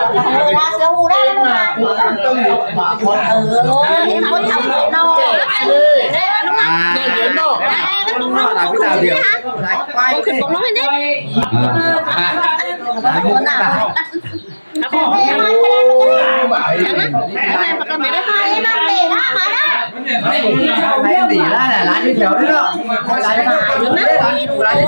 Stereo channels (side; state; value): both; inverted; correlation -1.00